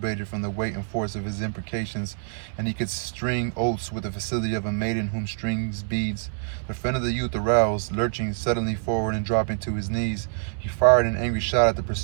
from the weight and force of his imprecations, and he could string oaths with the facility of a maiden whom strings beads. The friend of the youth aroused, lurching suddenly forward and dropping to his knees. He fired an angry shot at the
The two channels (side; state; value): left; silent; 61 dB below the other